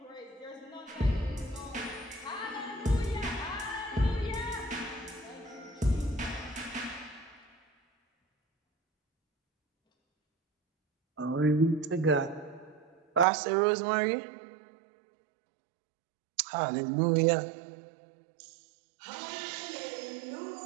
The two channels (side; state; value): left; drops out; at 13.2 s